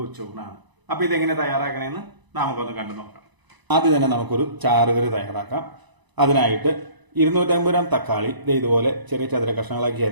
ഉച്ചൂണാണ്. അപ്പൊ ഇതെങ്ങനെ തയ്യാറാക്കണമെന്ന് നമുക്കൊന്ന് കണ്ടു നോക്കാം. ആദ്യം തന്നെ നമുക്കൊരു ചാറുകറി തയ്യാറാക്കാം. അതിനായിട്ട് 250 ഗ്രാം തക്കാളി ഇതുപോലെ ചെറിയ ചതുര കഷ്ണങ്ങളാക്കി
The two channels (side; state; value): left; late; 1.0 ms